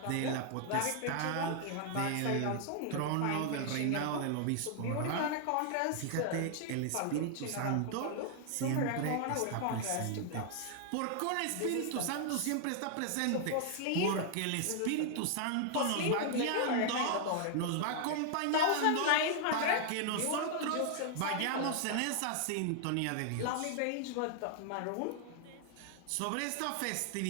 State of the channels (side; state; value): both; different; correlation 0.00